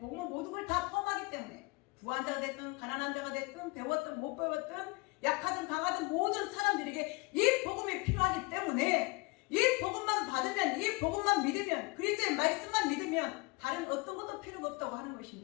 모든 걸 다 포함하기 때문에 부한 자가 됐든 가난한 자가 됐든 배웠든 못 배웠든 약하든 강하든 모든 사람들에게 이 복음이 필요하기 때문에 이 복음만 받으면 이 복음만 믿으면 그리스도의 말씀만 믿으면 다른 어떤 것도 필요가 없다고 하는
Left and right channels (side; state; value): right; quieter; 25.9 dB